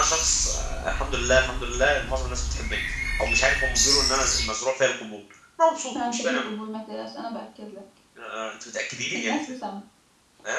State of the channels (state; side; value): identical; both; correlation 1.00